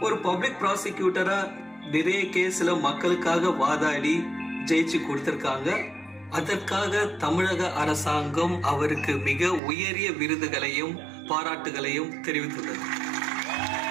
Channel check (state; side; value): drops out; left; at 9.6 s